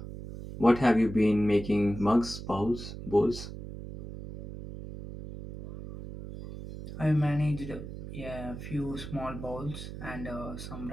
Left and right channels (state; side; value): noise; right; hum, 10 dB below the sound